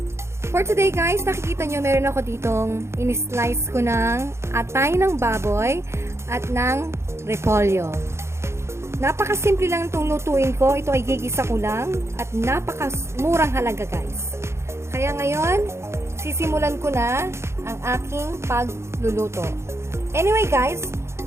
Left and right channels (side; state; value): left; late; 0.13 ms